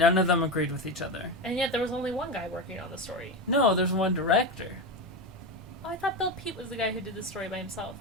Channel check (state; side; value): normal; both; correlation 0.17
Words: of them agreed with each other. And yet there was only one guy working on the story. No, there's one director. Oh, I thought Bill Peet was the guy who did the story by himself.